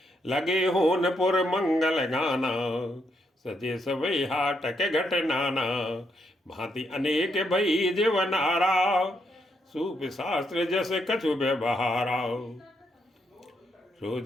लगे होनपुर मंगल गाना, सजे सवै हाटक घट नाना। भांति अनेक भई जीवनारा, सूप शास्त्र जस कछु व्यवहारा।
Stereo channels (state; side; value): normal; both; correlation 0.77